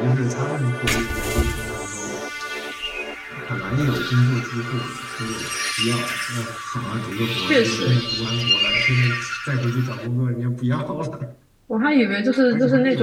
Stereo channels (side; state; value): both; identical; correlation 1.00